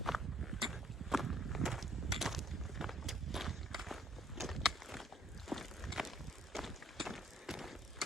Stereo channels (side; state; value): both; normal; correlation 0.63